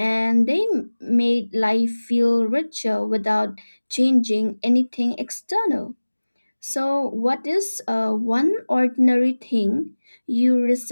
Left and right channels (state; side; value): inverted; both; correlation -1.00